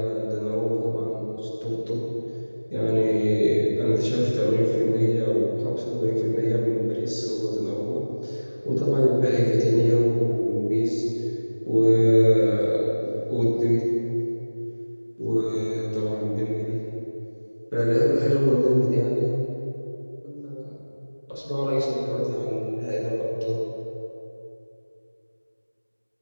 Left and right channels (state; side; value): inverted; both; correlation -1.00